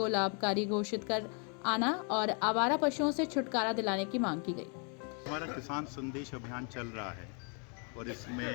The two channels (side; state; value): right; quieter; 38.3 dB